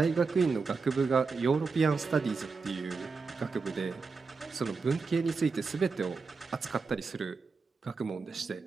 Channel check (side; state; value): left; quieter; 4.6 dB